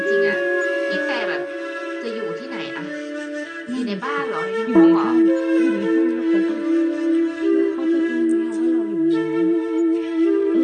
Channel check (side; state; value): both; identical; correlation 1.00